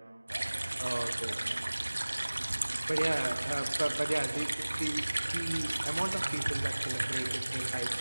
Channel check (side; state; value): both; inverted; correlation -1.00